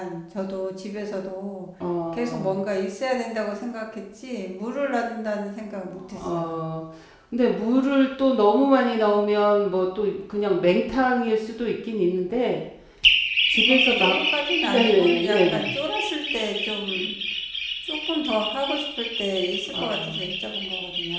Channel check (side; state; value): both; identical; correlation 1.00